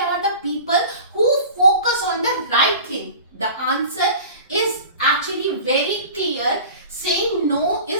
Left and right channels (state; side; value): inverted; both; correlation -0.39